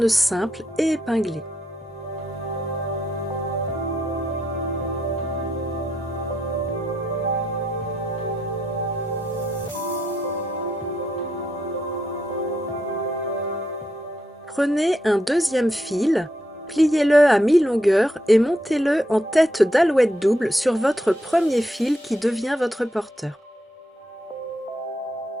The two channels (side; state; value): both; normal; correlation 0.79